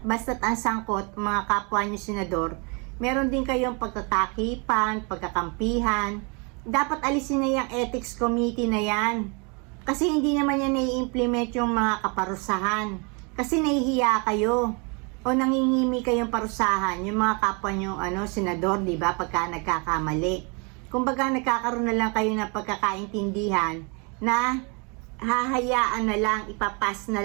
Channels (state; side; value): quieter; left; 32.8 dB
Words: basta't ang sangkot, mga kapwa niyo senador, meron din kayong pagtatakipan, pagkakampihan. Dapat alisin na yung ethics committee na yan, kasi hindi naman yan nai-implement yung mga kaparusahan, kasi nahihiya kayo o nangingimi kayong parusahan yung mga kapwa niyo senador, di ba, pagka nagkakamali. Kumbaga nagkakaroon na lang kayo ng pagkakaintindihan na hahayaan na lang, ipapas na